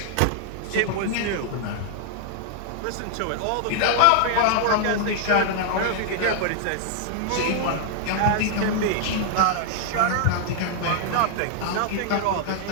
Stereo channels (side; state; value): both; different; correlation -0.01